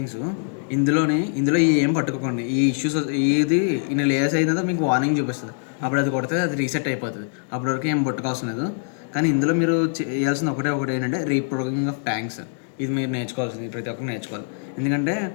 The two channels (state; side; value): silent; right; digital silence